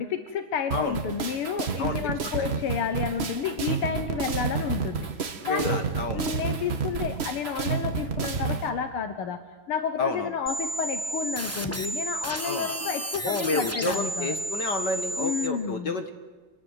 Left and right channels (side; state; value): both; normal; correlation -0.02